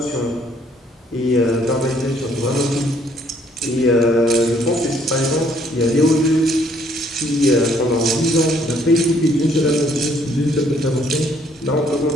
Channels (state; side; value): normal; both; correlation 0.65